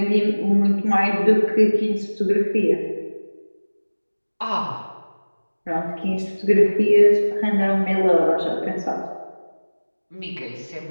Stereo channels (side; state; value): both; inverted; correlation -1.00